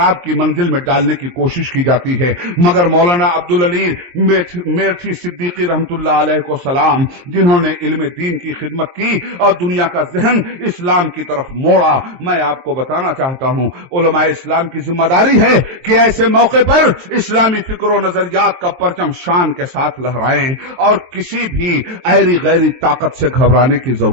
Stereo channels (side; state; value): left; late; 23 ms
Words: की मंजिल में डालने की कोशिश की जाती है, मगर मौलाना अब्दुल अली मेरठी सिद्दीकी रहमतुल्लाह अलैह को सलाम, जिन्होंने इल्म दीन की खिदमत की और दुनिया का जहन इस्लाम की तरफ मोड़ा, मैं आपको बताना चाहता हूं उलमाए इस्लाम की जिम्मेदारी है कि ऐसे मौके पर इस्लामी फिक्र और नजरियात का परचम शान के साथ लहराएं और किसी भी ऐरी गैरी ताकत से घबराने की